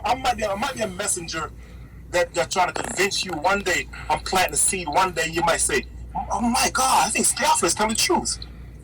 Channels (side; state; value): both; identical; correlation 1.00